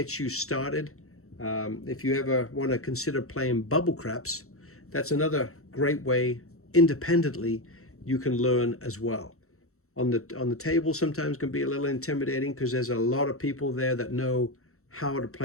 you started. If you ever want to consider playing bubble craps, that's another great way independently you can learn as well. On the table sometimes can be a little intimidating because there's a lot of people there that know how to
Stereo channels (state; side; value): late; right; 0.63 ms